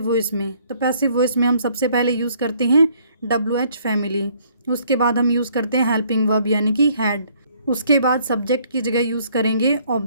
वॉइस में। तो पैसिव वॉइस में हम सबसे पहले यूज़ करते हैं WH फैमिली। उसके बाद हम यूज़ करते हैं हेल्पिंग वर्ब यानी कि हैड। उसके बाद सब्जेक्ट की जगह यूज़ करेंगे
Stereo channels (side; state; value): both; inverted; correlation -0.63